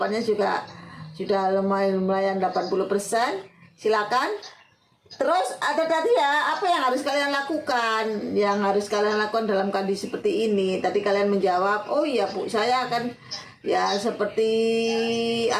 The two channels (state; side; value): identical; both; correlation 1.00